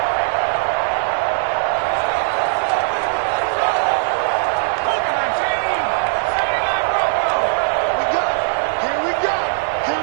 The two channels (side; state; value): left; silent; digital silence